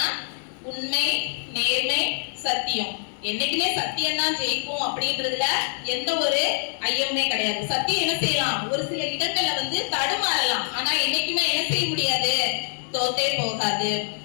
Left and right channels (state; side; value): silent; right; 62 dB below the other